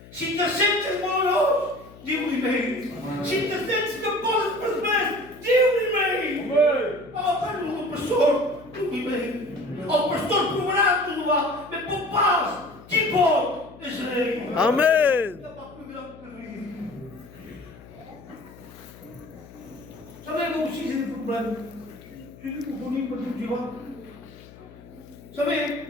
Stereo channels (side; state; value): left; noise; hum, 20 dB below the sound